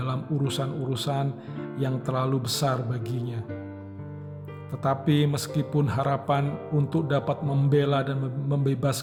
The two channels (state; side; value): identical; both; correlation 1.00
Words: urusan-urusan yang terlalu besar baginya. Tetapi meskipun harapan untuk dapat membela dan